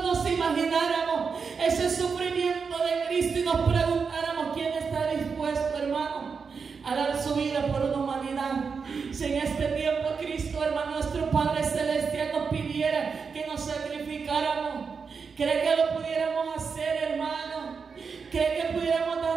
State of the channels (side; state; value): left; quieter; 5.5 dB